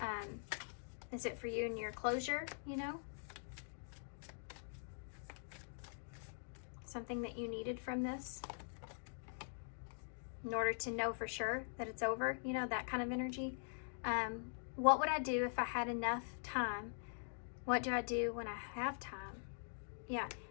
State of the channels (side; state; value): right; silent; digital silence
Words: Is it for you and your closure, you know? Something that you needed from this in order to know for sure that it's over, you know, that kind of energy. What would I do if I had enough time? What do I do when I have time? Yeah,